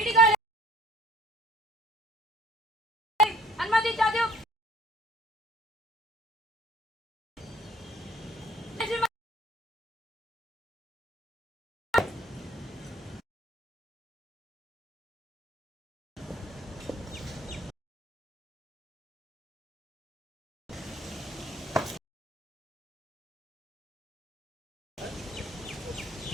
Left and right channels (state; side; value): normal; both; correlation 0.53